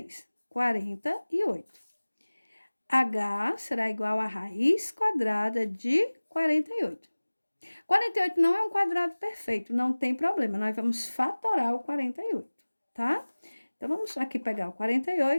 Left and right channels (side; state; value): both; inverted; correlation -1.00